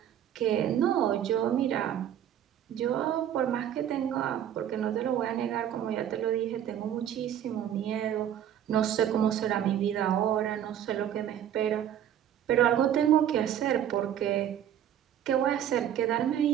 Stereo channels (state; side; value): quieter; left; 10.3 dB